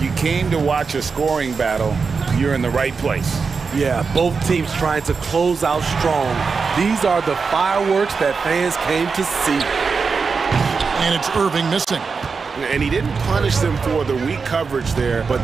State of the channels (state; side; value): quieter; left; 5.1 dB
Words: you came to watch a scoring battle, you're in the right place. Yeah, both teams trying to close out strong. These are the fireworks that fans came to see. And it's Irving missing. And he didn't punish them for the weak coverage there,